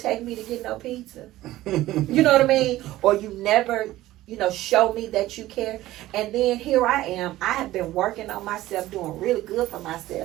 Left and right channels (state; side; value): quieter; left; 15.9 dB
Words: me to get no pizza. You know what I mean? Or you never, show me that you care. And then here I am. I have been working on myself, doing really good for